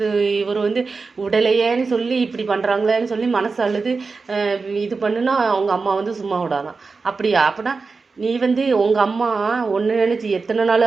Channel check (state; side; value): quieter; left; 4.4 dB